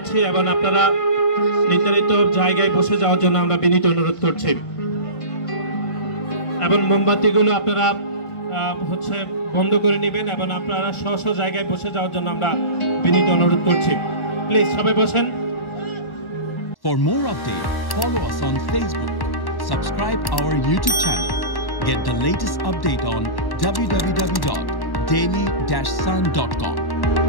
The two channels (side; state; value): right; late; 1.1 ms